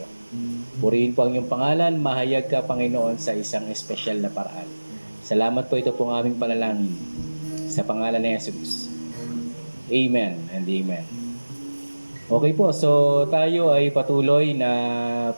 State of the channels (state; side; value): inverted; both; correlation -1.00